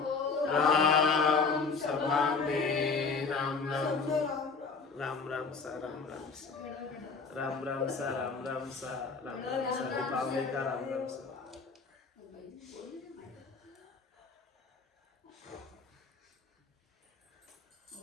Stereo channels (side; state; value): right; quieter; 4.7 dB